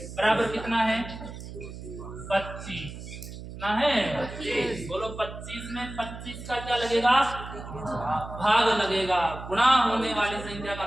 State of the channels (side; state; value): right; noise; hum, 11 dB below the sound